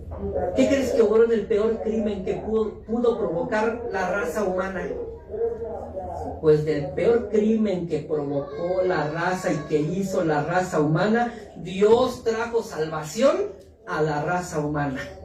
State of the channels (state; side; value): identical; both; correlation 1.00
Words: ¿Qué crees que obró en el peor crimen que pudo provocar la raza humana? Pues del peor crimen que provocó la raza y que hizo la raza humana, Dios trajo salvación a la raza humana.